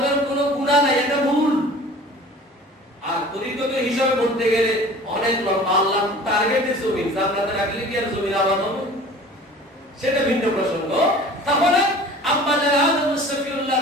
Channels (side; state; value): both; normal; correlation 0.44